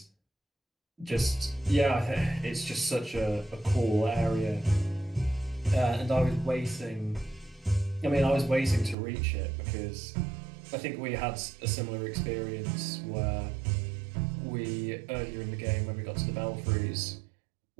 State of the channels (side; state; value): left; drops out; at 9.0 s